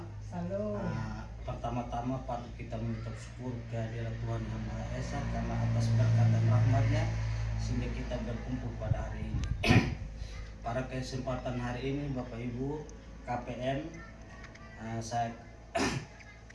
Salam. Pertama-tama patut kita mengucap syukur kehadirat Tuhan Yang Maha Esa karena atas berkat dan rahmat-Nya sehingga kita berkumpul pada hari ini. Pada kesempatan hari ini Bapak Ibu KPM,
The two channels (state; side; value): identical; both; correlation 1.00